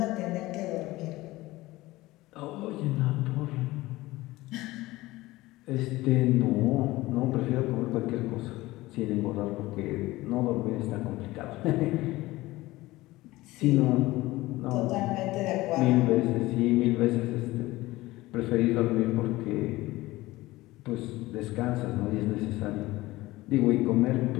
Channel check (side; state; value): right; quieter; 18.8 dB